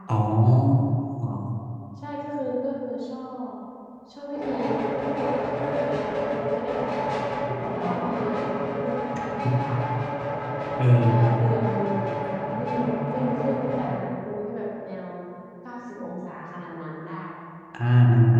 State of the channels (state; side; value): identical; both; correlation 1.00